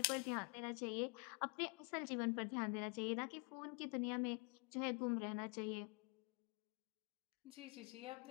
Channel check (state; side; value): quieter; right; 31.9 dB